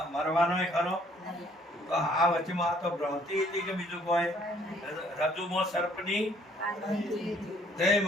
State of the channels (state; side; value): normal; both; correlation 0.62